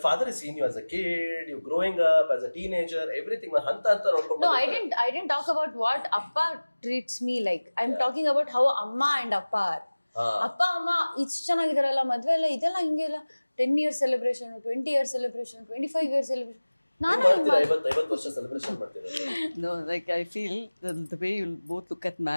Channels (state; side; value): inverted; both; correlation -1.00